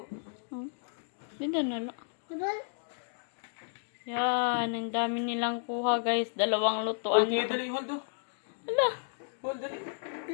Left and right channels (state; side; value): silent; right; digital silence